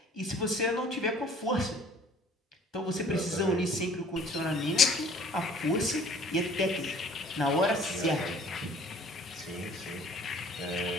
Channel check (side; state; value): both; normal; correlation 0.53